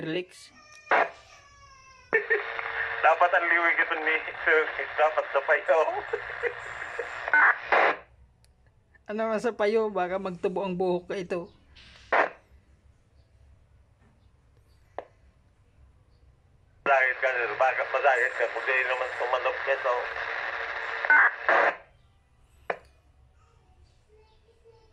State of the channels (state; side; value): identical; both; correlation 1.00